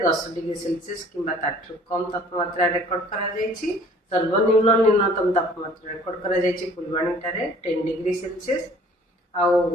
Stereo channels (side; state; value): both; normal; correlation 0.53